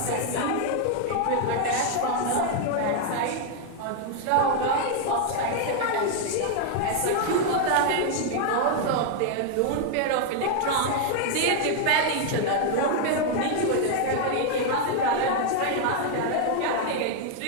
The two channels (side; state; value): both; different; correlation 0.00